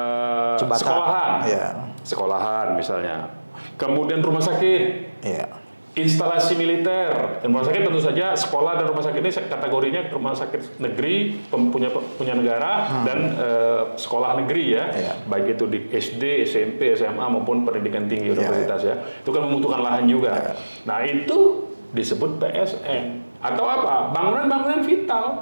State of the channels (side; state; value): both; inverted; correlation -1.00